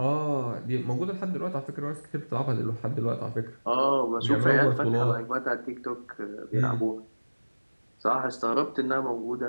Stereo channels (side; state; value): both; inverted; correlation -1.00